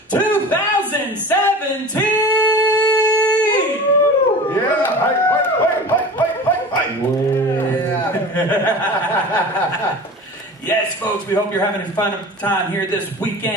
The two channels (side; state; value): both; normal; correlation 0.36